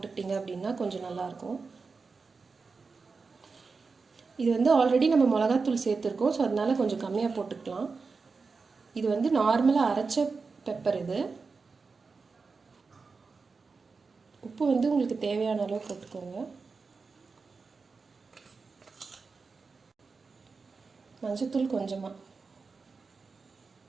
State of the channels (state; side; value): quieter; left; 4.6 dB